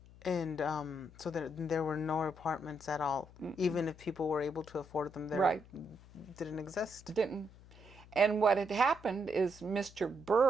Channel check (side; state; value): left; noise; hum, 21 dB below the sound